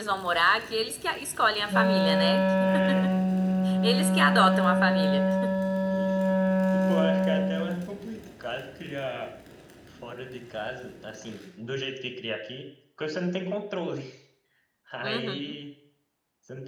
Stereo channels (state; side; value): identical; both; correlation 1.00